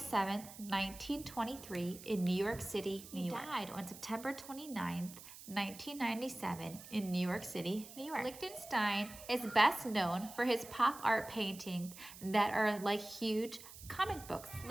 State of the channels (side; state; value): right; noise; hiss, 15 dB below the sound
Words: 1923 in New York City, New York. He died on September 29th, 1997 in New York City, New York. Lichtenstein is best known for his pop art paintings that are like huge comic books.